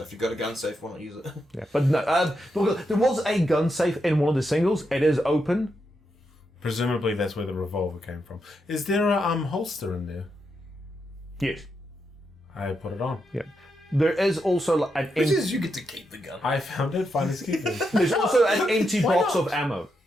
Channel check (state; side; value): normal; both; correlation 0.83